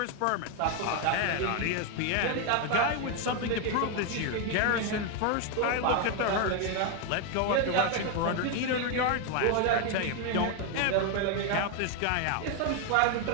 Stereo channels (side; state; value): both; different; correlation 0.01